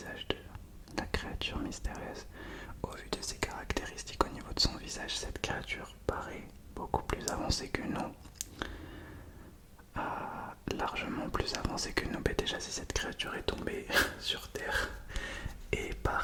de la créature mystérieuse. Au vu de ses caractéristiques au niveau de son visage, cette créature paraît beaucoup plus avancée que nous. Largement plus avancée que nous. Mais déjà si cette créature est tombée sur terre et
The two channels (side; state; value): both; identical; correlation 1.00